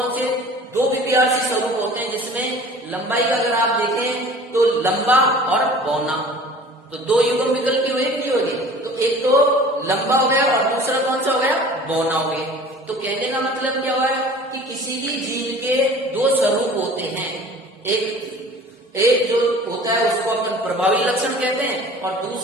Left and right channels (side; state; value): both; normal; correlation 0.45